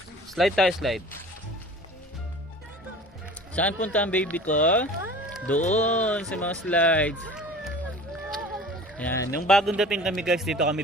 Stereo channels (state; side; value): normal; both; correlation 0.42